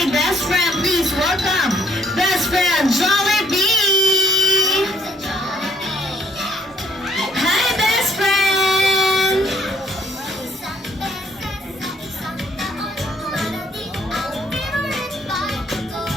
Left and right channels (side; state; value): both; normal; correlation 0.65